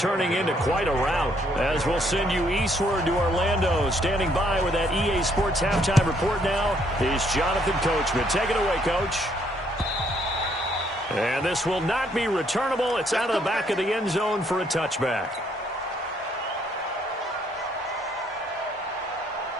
into quite a rout. As we'll send you eastward to Orlando. Standing by with that EA Sports halftime report now is Jonathan Coachman. Take it away, Coach. And this will not be returnable. It's out of the back of the end zone for a touchback.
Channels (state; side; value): normal; both; correlation 0.69